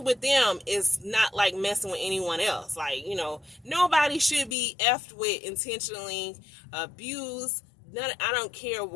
with them is not like messing with anyone else. Nobody should be effed with, intentionally abused. I don't care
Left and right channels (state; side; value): drops out; right; at 4.5 s